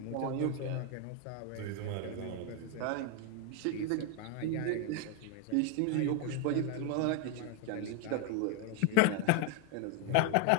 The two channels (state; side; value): different; both; correlation 0.01